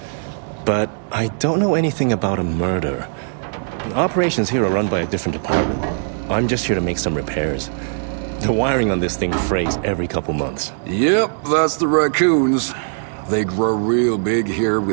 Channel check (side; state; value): left; silent; 66 dB below the other